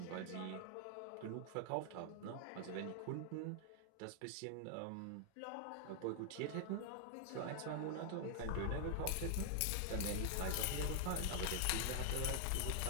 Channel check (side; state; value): both; different; correlation 0.00